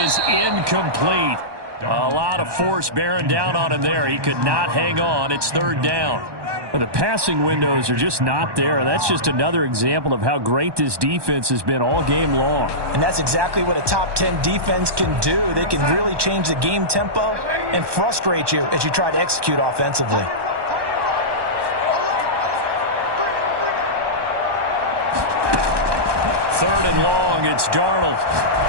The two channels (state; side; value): late; left; 1.2 ms